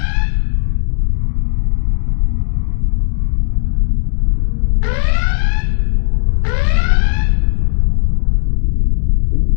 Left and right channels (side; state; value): right; silent; digital silence